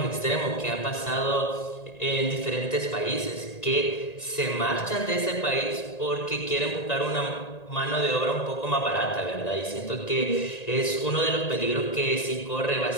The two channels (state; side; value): late; right; 1.9 ms